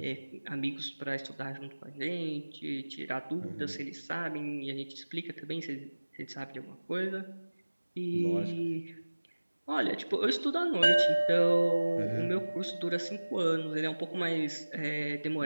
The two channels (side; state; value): both; inverted; correlation -1.00